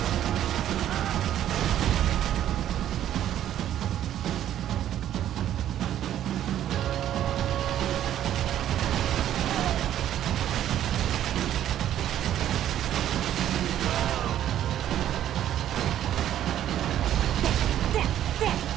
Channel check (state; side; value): quieter; left; 11.4 dB